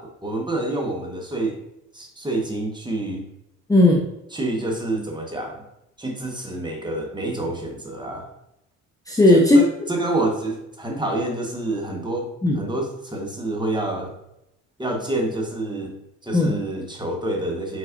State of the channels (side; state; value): both; normal; correlation 0.55